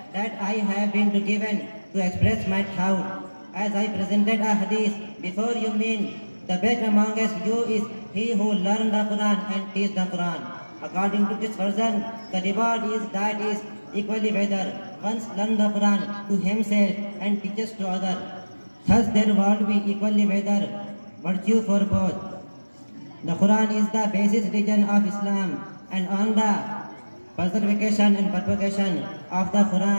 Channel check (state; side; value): inverted; both; correlation -1.00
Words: that I have been given to express my thought as I presented a hadith before you. Mean the best amongst you is he who learns the Quran and teaches the Quran. According to this version, the reward is equally whether one learns the Quran to himself and teaches to others. Thus there will be equally whether virtue for both. The Quran is the basis religion of Islam, and on the preservation and propagation of the